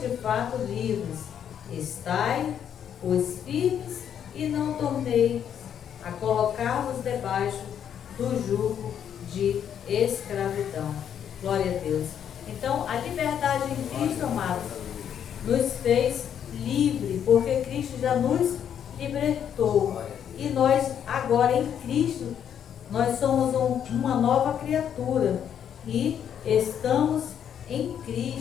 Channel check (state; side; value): quieter; right; 8.9 dB